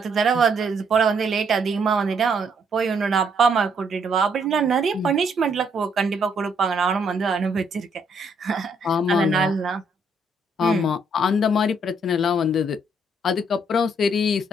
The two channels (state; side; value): normal; both; correlation 0.70